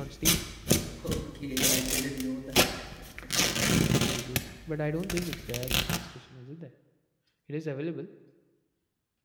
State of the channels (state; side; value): identical; both; correlation 1.00